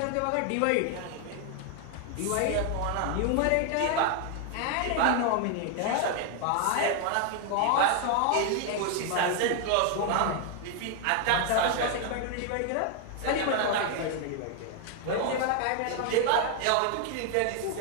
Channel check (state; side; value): different; both; correlation 0.00